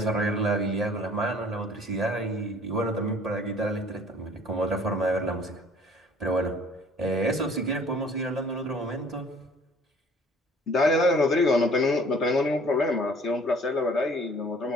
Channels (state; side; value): normal; both; correlation 0.54